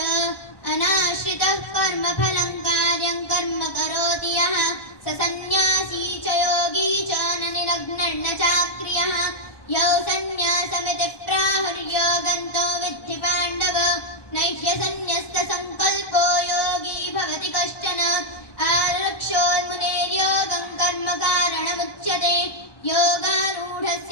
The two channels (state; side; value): late; right; 1.2 ms